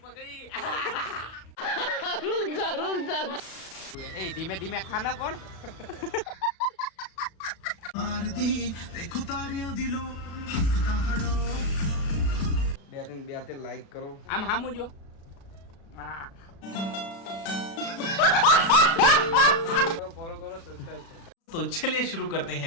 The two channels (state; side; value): late; right; 36 ms